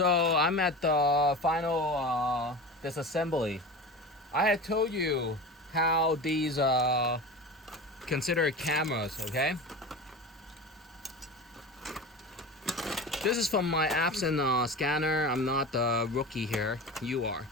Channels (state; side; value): normal; both; correlation 0.30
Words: I'm at the final disassembly. I had told you how these consider cameras, okay? This is from my Epson scanner. I'm not the rookie here. You are.